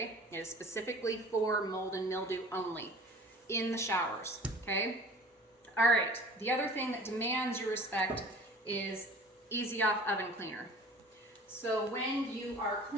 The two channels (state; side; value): normal; both; correlation 0.45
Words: It is specifically for mold and mildew only in the showers, okay? All right, the other thing that demands your respect is Easy Off Oven Cleaner. So when you are